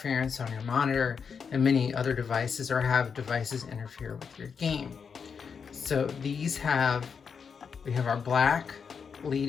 on your monitor and many other devices, or have devices interfere with your game. So we have our black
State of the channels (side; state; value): right; quieter; 6.2 dB